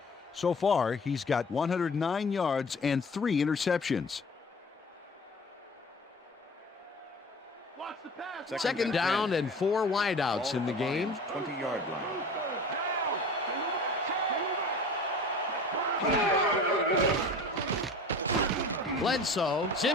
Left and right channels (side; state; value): both; normal; correlation 0.41